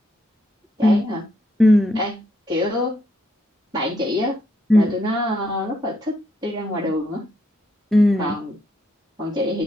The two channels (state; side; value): normal; both; correlation 0.76